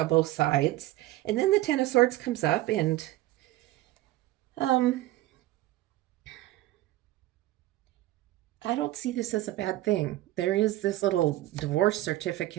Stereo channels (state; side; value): quieter; left; 16.4 dB